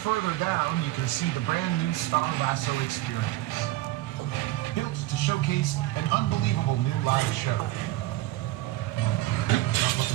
down, you can see the brand new Star Lasso experience. Built to showcase an unbelievable new live show. Not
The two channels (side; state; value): left; quieter; 16.7 dB